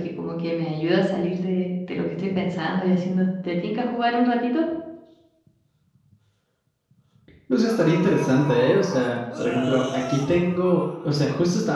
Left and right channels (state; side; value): identical; both; correlation 1.00